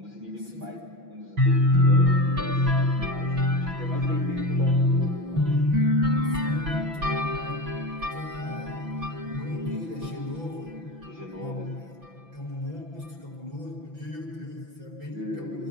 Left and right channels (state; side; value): late; left; 6.0 ms